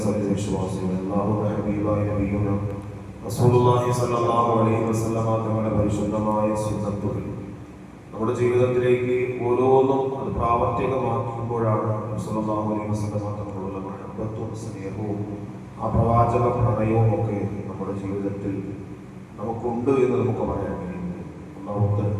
സത്യവിശ്വാസികളെ, അല്ലാഹുവിന്റെ ഹബീബായ നബിയുന റസൂലുള്ളാഹി സ്വല്ലല്ലാഹു അലൈഹി വസല്ലമ തങ്ങളുടെ പരിശുദ്ധമായ സുന്നത്തുകൾ നമ്മുടെ ജീവിതത്തിലേക്ക് ഓരോന്നും അത് പ്രാവർത്തികമാക്കുമ്പോഴാണ് സ്വല്ലല്ലാഹു അലൈഹി വസല്ലമ തങ്ങളുടെ മഹബ്ബത്തും സ്നേഹവും ആ പ്രവാചക പ്രണയവും ഒക്കെ നമ്മുടെ ജീവിതത്തിൽ നമുക്കുണ്ട് എന്ന് നമുക്ക് പറയാൻ കഴിയുന്നു. അല്ലാഹു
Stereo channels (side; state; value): both; identical; correlation 1.00